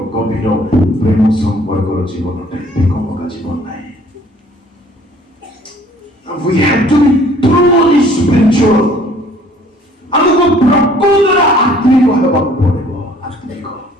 ଗଭୀର ପ୍ରେମ ସମ୍ପର୍କର ଜୀବନଟା ଏକମକା ଜୀବନ ନାହିଁ। We have to be truly spiritual. ଆମକୁ ପ୍ରକୃତରେ ଆତ୍ମିକ ହେବାକୁ ପଡ଼ିବ। ଆତ୍ମିକ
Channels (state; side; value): normal; both; correlation 0.56